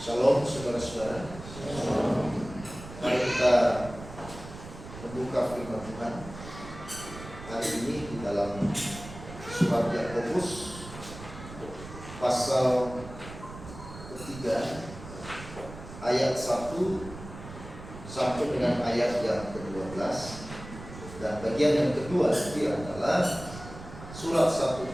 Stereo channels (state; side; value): noise; right; rumble, 14 dB below the sound